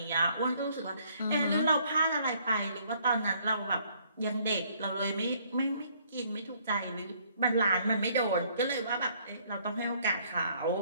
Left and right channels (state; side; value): inverted; both; correlation -0.64